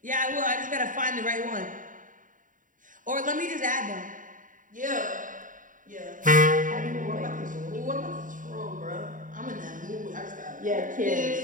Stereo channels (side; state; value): left; late; 0.38 ms